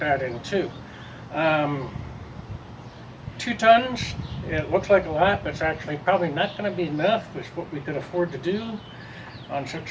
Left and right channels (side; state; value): both; identical; correlation 1.00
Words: in too. Um, 2 tons, it looks like a lot, but it's actually probably not going to be enough. It's what we could afford to do on such